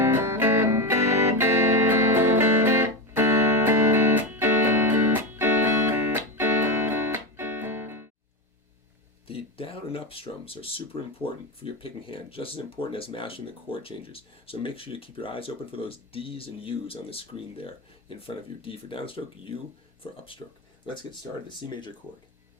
The down and up strums are super important for your picking hand, just as important as mastering the chord changes. So make sure you keep your eyes open for those D's and U's on the screen there in front of you. D for downstroke, U for upstroke. Let's get started. The C major chord.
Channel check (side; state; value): both; normal; correlation 0.15